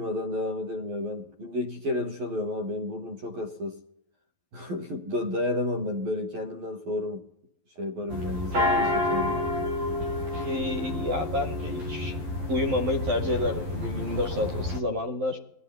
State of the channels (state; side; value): late; left; 11 ms